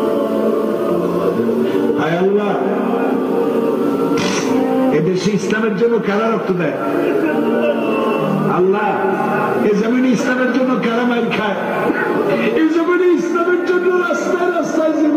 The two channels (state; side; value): identical; both; correlation 1.00